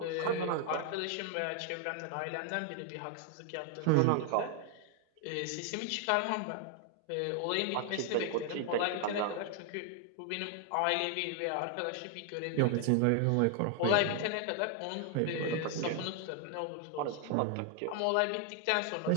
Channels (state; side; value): different; both; correlation 0.00